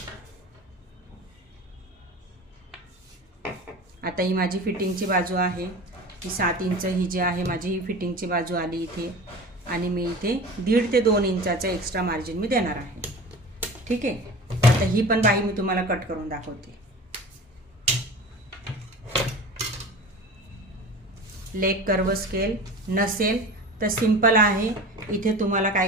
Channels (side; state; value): both; normal; correlation 0.35